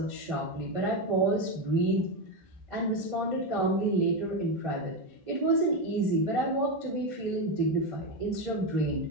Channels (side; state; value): both; normal; correlation 0.11